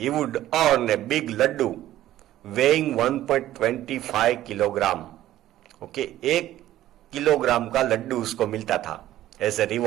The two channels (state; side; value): quieter; left; 13.8 dB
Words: would earn a big laddu weighing 1.25 kilogram. Okay, 1 kilogram का लड्डू उसको मिलता था एज ए